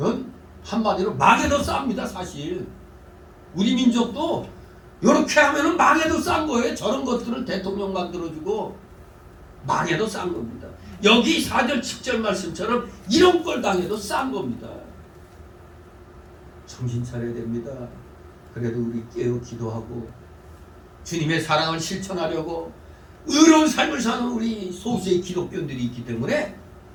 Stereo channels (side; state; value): both; identical; correlation 1.00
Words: 한마디로 망에 더 쌉니다. 사실 우리 민족도 이렇게 하면은 망에 더 싼 거예요. 저런 것들을 대통령 만들어주고 망에 더 싼 겁니다. 여기 4절 7절 말씀처럼 이런 걸 당해도 싼 겁니다. 정신 차려야 됩니다. 그래도 우리 깨어 기도하고 주님의 사랑을 실천하려고 의로운 삶을 사는 우리 소수의 기독교인들이 있기 때문에